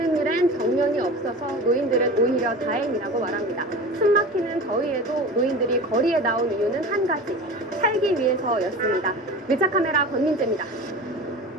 일엔 정년이 없어서 노인들은 오히려 다행이라고 말합니다. 숨막히는 더위에도 노인들이 거리에 나온 이유는 한 가지, 살기 위해서였습니다. 밀착카메라 권민재입니다.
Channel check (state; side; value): normal; both; correlation 0.33